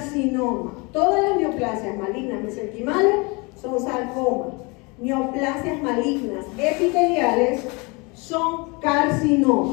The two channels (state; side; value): quieter; right; 28.3 dB